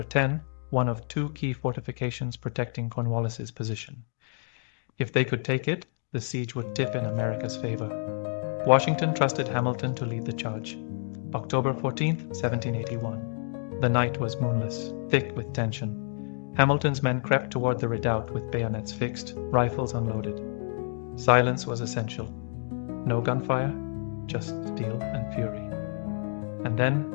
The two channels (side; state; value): right; silent; 59 dB below the other